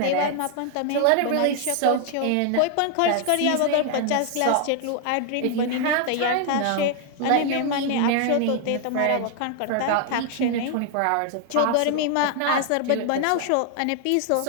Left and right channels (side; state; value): both; different; correlation 0.00